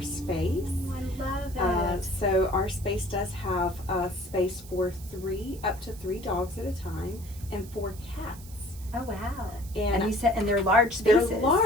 space. I love it. So our space does have space for up to 3 dogs at a time and 4 cats. Oh wow! And you said, and they're large spaces. They're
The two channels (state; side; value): noise; right; hiss, 19 dB below the sound